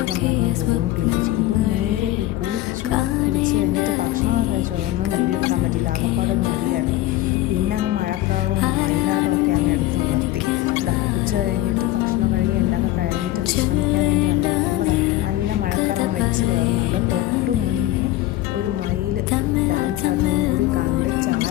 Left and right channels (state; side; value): quieter; right; 15.4 dB